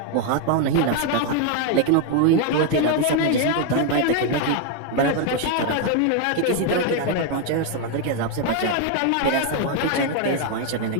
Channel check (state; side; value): different; both; correlation 0.00